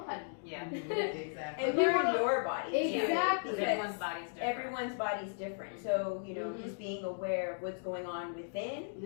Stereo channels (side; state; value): right; silent; digital silence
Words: Yeah. Exactly. And But learn learn your body. Exactly. Because everyone's body's different. Everyone's body's different. So, Mhm. just being aware of what's going on within.